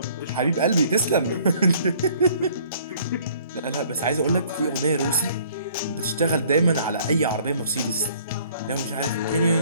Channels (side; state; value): both; inverted; correlation -0.57